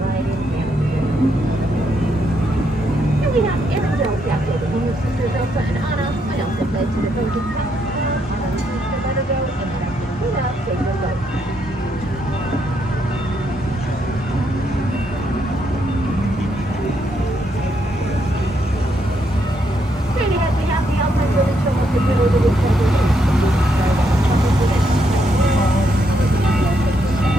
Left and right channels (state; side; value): normal; both; correlation 0.77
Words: in Canada. Here we have Arendelle Castle, the home of sisters Elsa and Anna, and Elsa fled to the Frozen Palace, Anna refused to let her go, and Captain Luna saved her life.